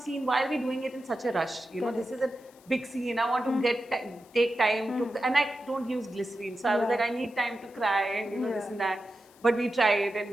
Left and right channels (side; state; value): left; noise; hiss, 28 dB below the sound